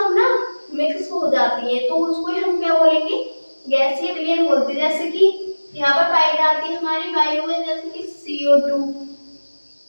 ना मिक्स हो जाती है, तो उसको हम क्या बोलेंगे? गैसीय विलयन बोलते हैं। जैसे कि यहाँ पर पाई जाती है हमारी वायु में, जैसे कि CO2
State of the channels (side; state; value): both; inverted; correlation -1.00